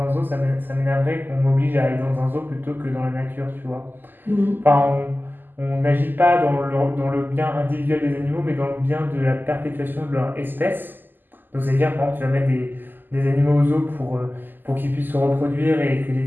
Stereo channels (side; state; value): left; late; 0.090 ms